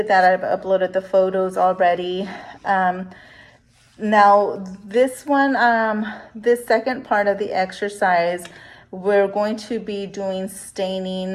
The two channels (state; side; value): identical; both; correlation 1.00